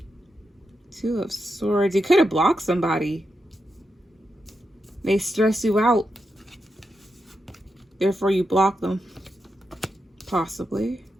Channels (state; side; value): normal; both; correlation 0.86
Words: Two of Swords. You could have blocked somebody. They stress you out. Therefore, you block them. Possibly.